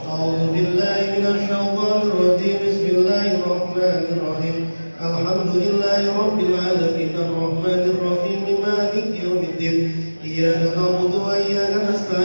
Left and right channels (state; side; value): inverted; both; correlation -1.00